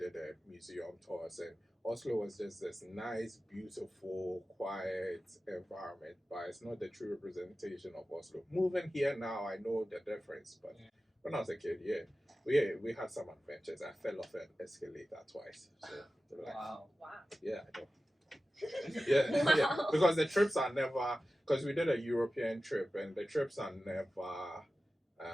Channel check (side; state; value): both; normal; correlation 0.94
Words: a museum tours, and Oslo was just this nice, beautiful, quiet environment, but it's not the true representation of Oslo. Moving here now, I know the difference, but when I was a kid, we had some adventures. I fell off an escalator twice. So, like, Wow. yeah, I know. Yeah, because the trips are never, because we did a European trip, and the trips are never.